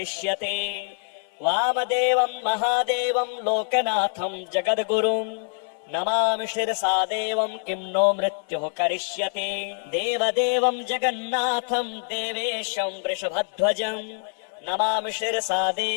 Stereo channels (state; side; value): silent; right; 62 dB below the other